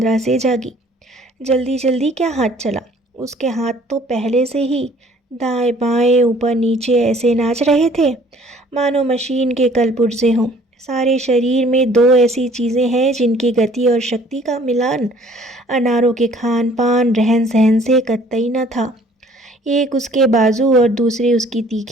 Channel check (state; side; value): normal; both; correlation 0.56